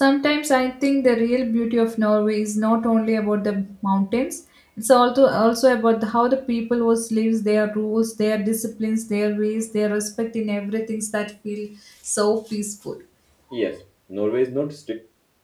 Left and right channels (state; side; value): identical; both; correlation 1.00